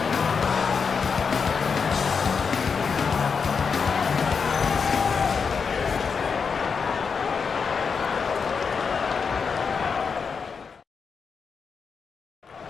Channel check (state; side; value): quieter; right; 5.7 dB